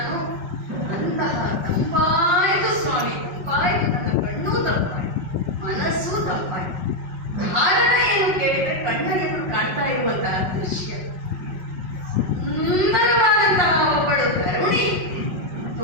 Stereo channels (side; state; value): left; late; 5.4 ms